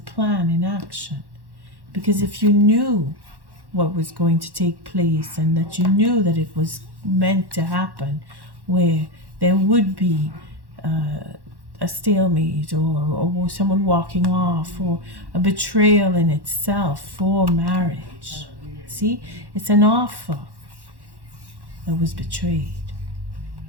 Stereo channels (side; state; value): left; late; 1.1 ms